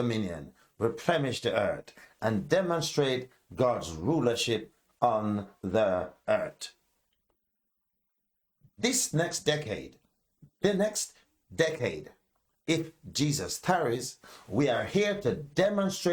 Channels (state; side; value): identical; both; correlation 1.00